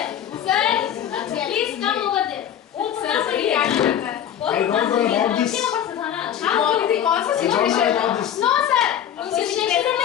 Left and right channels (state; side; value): quieter; right; 9.9 dB